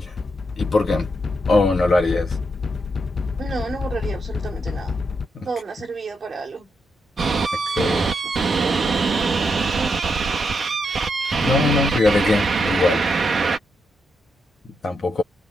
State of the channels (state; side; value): normal; both; correlation 0.82